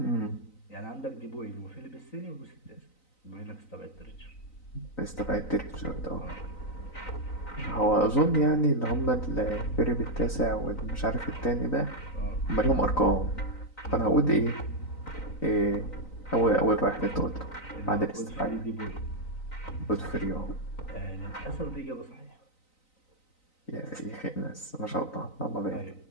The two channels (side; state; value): right; late; 3.9 ms